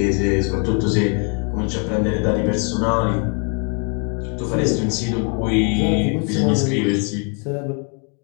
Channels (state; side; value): quieter; right; 39.6 dB